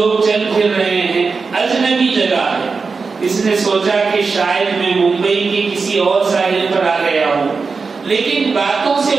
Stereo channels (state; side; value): quieter; left; 4.7 dB